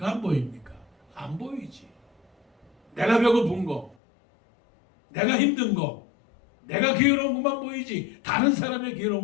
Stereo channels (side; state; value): right; drops out; at 4.0 s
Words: 안 보입니까? 안 보이지. 내가 배고픈 거, 내가 힘든 거, 내가 괴로운 것만 보이지 다른 사람의